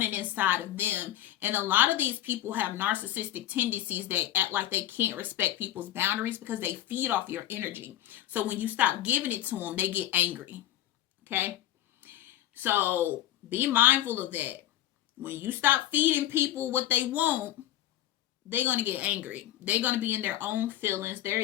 inside of them. And a lot of these people have narcissistic tendencies that act like they can't respect people's boundaries because they feed off your energy. So when you stop giving it to them, they get angry. Okay? So be mindful of that. When you stop feeding people what they want, they're going to get angry. They're going to be in their own feelings.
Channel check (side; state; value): right; quieter; 13.5 dB